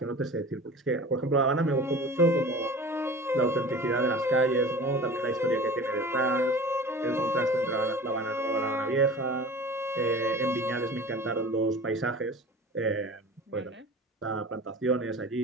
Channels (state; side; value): normal; both; correlation 0.39